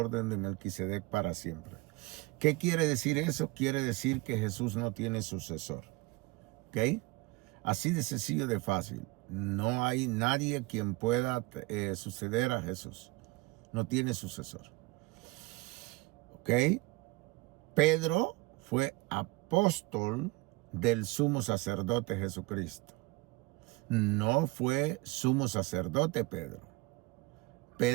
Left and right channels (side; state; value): left; quieter; 22.4 dB